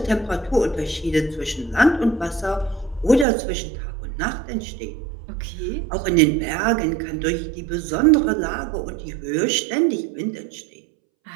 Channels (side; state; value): left; drops out; at 3.2 s